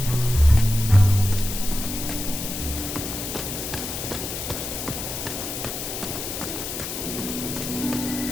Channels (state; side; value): noise; left; hiss, 5 dB below the sound